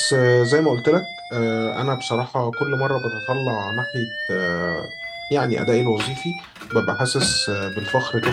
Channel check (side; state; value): both; identical; correlation 1.00